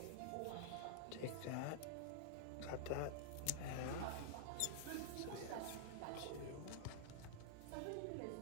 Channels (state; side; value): different; both; correlation -0.01